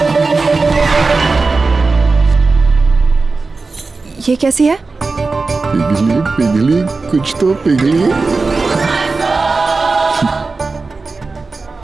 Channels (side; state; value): left; quieter; 3.9 dB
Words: ये कैसी है? पिघली पिघली कुछ तो पिघली।